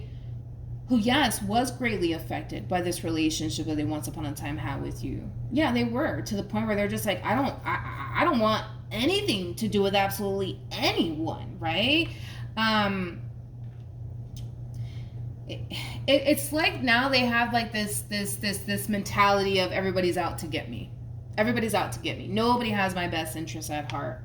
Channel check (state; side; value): identical; both; correlation 1.00